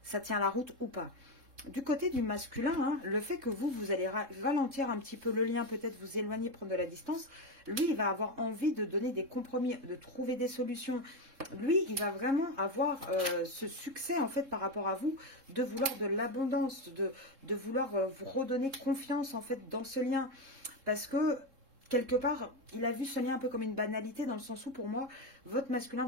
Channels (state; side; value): late; left; 3.7 ms